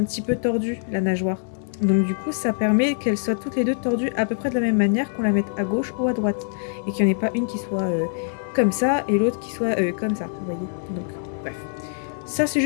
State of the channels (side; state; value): right; silent; digital silence